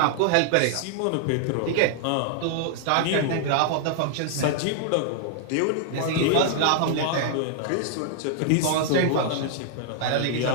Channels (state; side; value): different; both; correlation -0.01